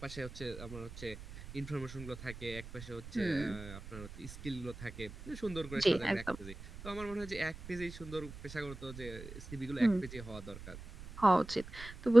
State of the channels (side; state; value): right; noise; rumble, 13 dB below the sound